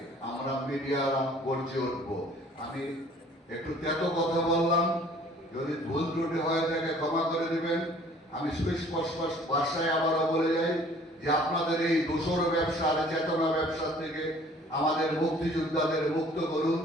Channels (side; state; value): both; normal; correlation 0.54